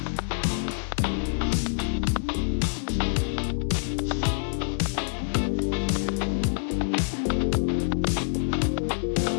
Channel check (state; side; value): silent; right; digital silence